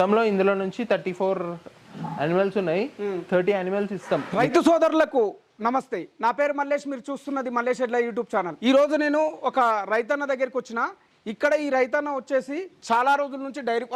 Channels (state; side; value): identical; both; correlation 1.00